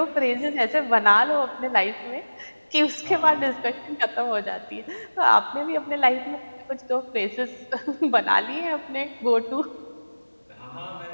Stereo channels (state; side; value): inverted; both; correlation -1.00